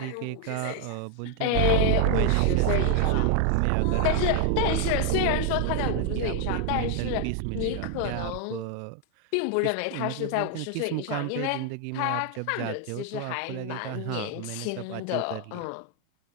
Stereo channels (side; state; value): both; different; correlation 0.00